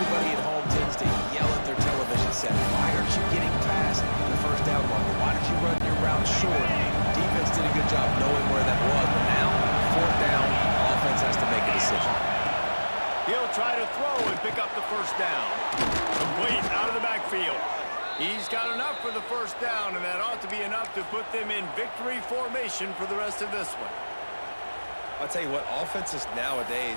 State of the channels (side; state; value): both; inverted; correlation -1.00